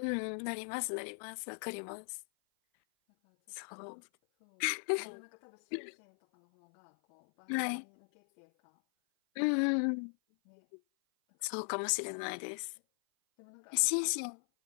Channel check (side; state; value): right; silent; 53 dB below the other